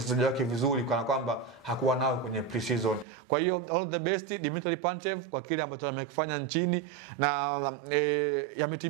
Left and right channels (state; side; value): drops out; left; at 3.1 s